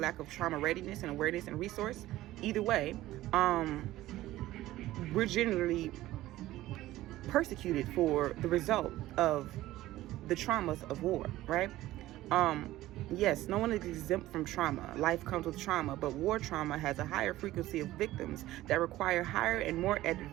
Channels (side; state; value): left; quieter; 15.8 dB